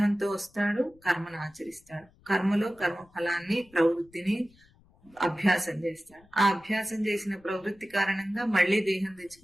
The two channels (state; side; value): noise; left; rumble, 29 dB below the sound